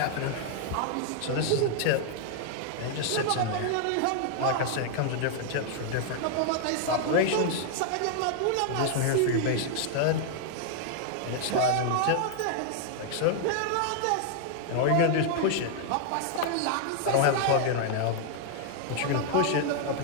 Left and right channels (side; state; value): both; different; correlation 0.00